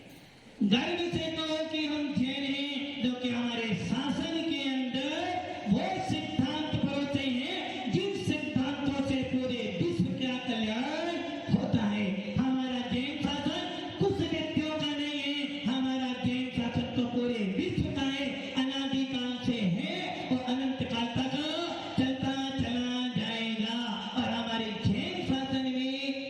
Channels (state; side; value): identical; both; correlation 1.00